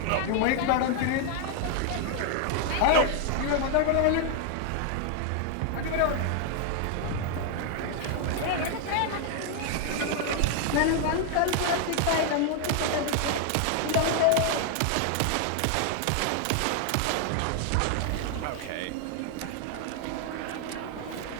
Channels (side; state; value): both; different; correlation 0.00